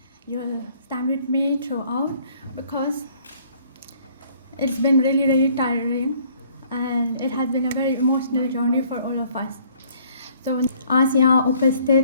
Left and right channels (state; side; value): inverted; both; correlation -0.60